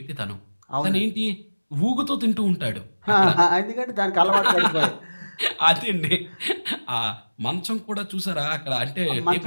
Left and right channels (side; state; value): both; inverted; correlation -1.00